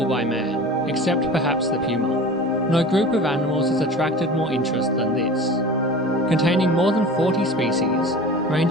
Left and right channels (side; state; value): both; normal; correlation 0.37